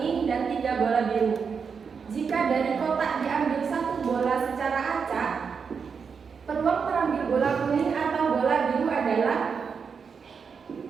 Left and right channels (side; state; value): left; quieter; 6.0 dB